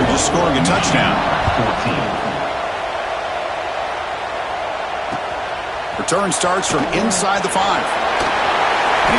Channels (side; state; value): both; identical; correlation 1.00